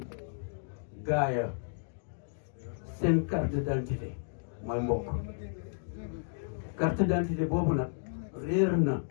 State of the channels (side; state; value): right; silent; digital silence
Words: gaaya seen carte d'identité mooy mbokk carte d'identité boobu nag réer na